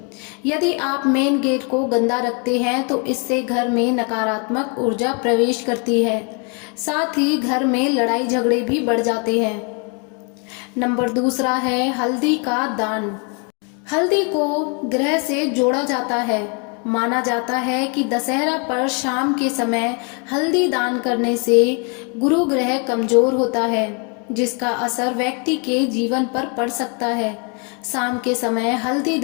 यदि आप मेन गेट को गंदा रखते हैं तो इससे घर में नकारात्मक ऊर्जा प्रवेश करती है। साथ ही घर में लड़ाई झगड़े भी बढ़ जाते हैं। नंबर 2 है हल्दी का दान। हल्दी को ग्रह से जोड़ा जाता है। माना जाता है कि दशहरा पर शाम के समय हल्दी दान करने से गुरु ग्रह कमजोर होता है, जिसका असर व्यक्ति के जीवन पर पड़ सकता है। शाम के समय हल्दी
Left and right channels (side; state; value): right; quieter; 36.2 dB